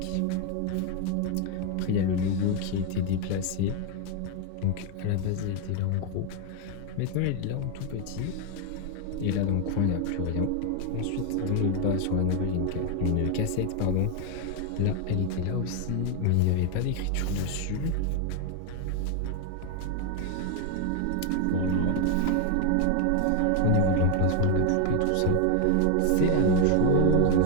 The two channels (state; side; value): different; both; correlation 0.01